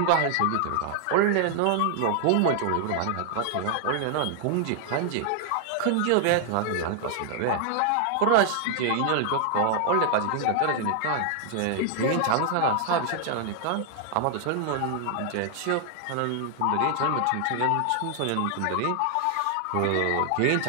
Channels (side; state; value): both; different; correlation 0.00